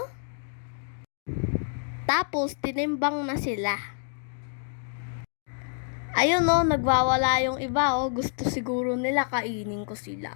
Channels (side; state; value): right; silent; digital silence